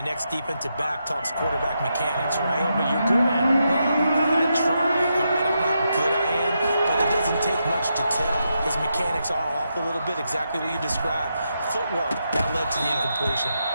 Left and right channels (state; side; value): inverted; both; correlation -0.83